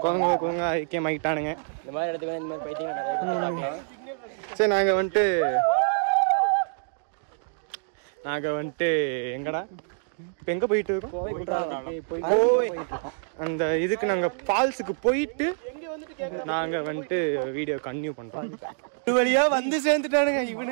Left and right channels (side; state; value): left; silent; digital silence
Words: குரங்கு ஐக்கியமாயிட்டானுங்க. இந்த மாதிரி இடத்துக்கு இந்த மாதிரி பைத்தியம். சரி, நாங்க வந்துட்டு எங்கடா இப்ப எங்க போயிட்டு இருக்கோம்? அந்த இதுக்கு நாங்க ஃபால்ஸுக்கு போயிட்டு நாங்க வந்துட்டு வீடியோ கன்டினியூ பண்றோம். இது வழியா வந்து சேர்ந்துட்டானுங்க.